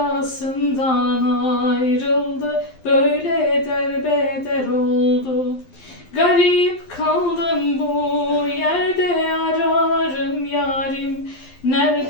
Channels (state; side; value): late; right; 11 ms